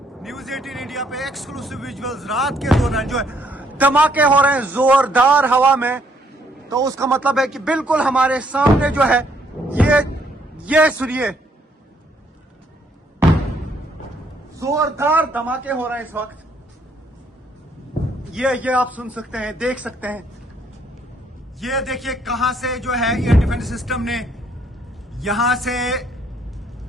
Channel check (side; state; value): both; normal; correlation 0.68